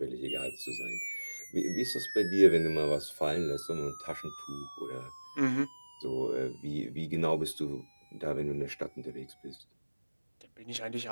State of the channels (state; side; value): inverted; both; correlation -1.00